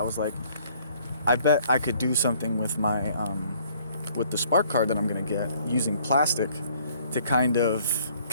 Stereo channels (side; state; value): both; inverted; correlation -0.61